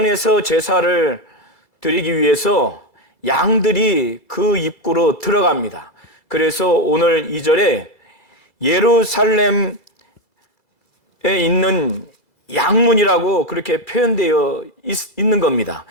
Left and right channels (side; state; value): left; late; 2.0 ms